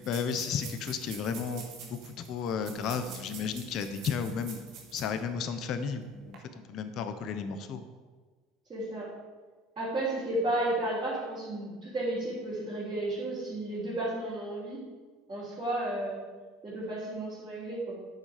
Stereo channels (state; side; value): normal; both; correlation 0.47